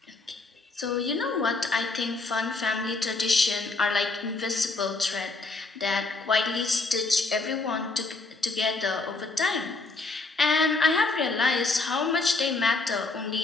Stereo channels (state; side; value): quieter; right; 3.5 dB